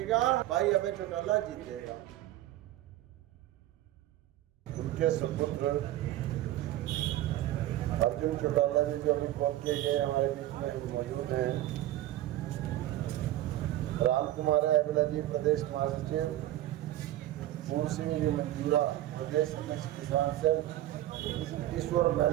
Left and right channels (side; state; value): left; quieter; 14.4 dB